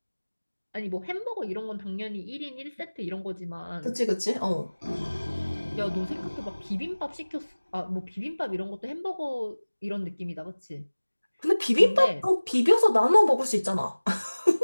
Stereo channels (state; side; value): inverted; both; correlation -1.00